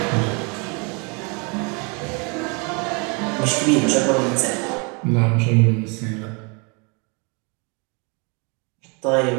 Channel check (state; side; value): quieter; left; 32.6 dB